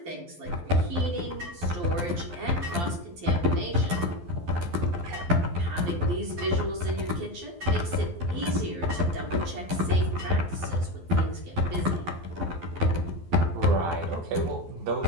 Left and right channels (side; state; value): left; late; 12 ms